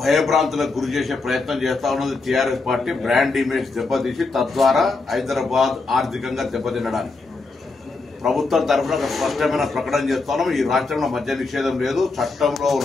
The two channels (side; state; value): right; quieter; 3.8 dB